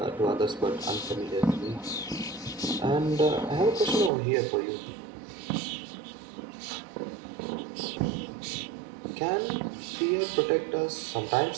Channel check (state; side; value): drops out; left; at 4.1 s